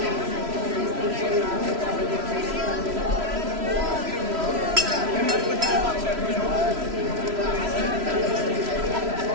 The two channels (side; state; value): left; late; 3.0 ms